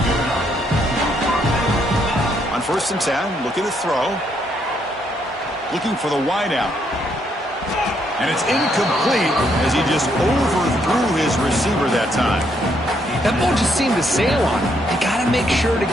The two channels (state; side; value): normal; both; correlation 0.73